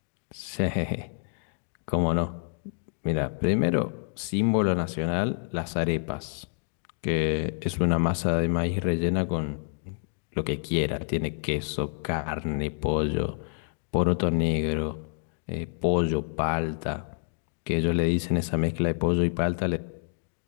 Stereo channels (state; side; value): silent; right; digital silence